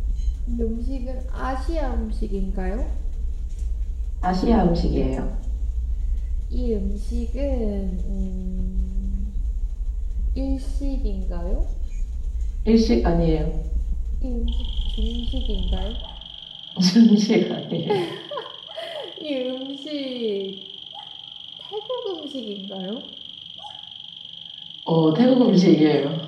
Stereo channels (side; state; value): both; identical; correlation 1.00